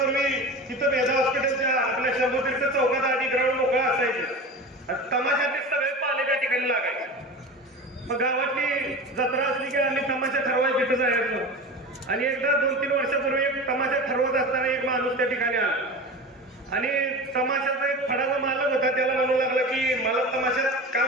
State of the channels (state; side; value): normal; both; correlation 0.31